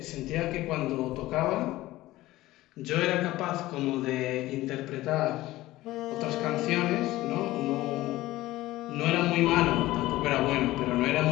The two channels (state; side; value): quieter; right; 17.1 dB